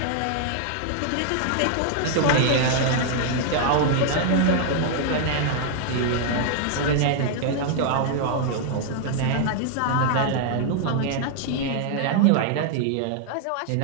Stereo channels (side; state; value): both; different; correlation 0.00